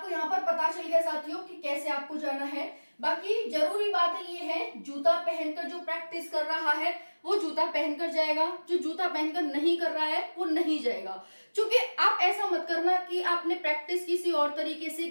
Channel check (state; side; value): inverted; both; correlation -1.00